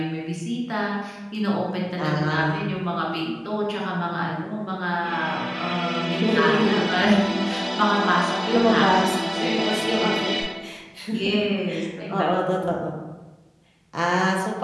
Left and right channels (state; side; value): identical; both; correlation 1.00